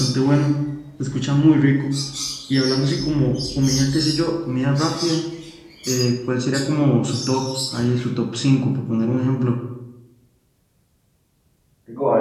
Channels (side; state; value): both; identical; correlation 1.00